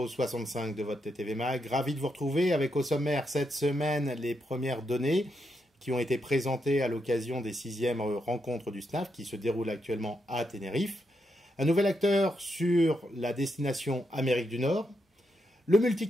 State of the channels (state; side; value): normal; both; correlation 0.82